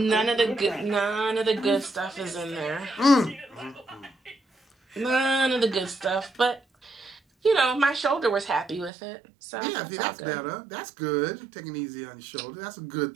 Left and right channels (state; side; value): drops out; left; at 8.9 s